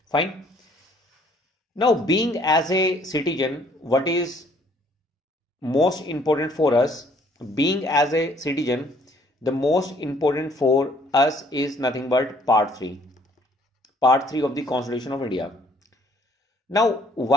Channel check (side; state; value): both; normal; correlation 0.61